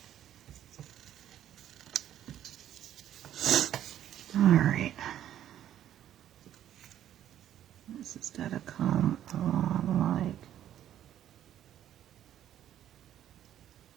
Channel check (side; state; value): left; quieter; 11.2 dB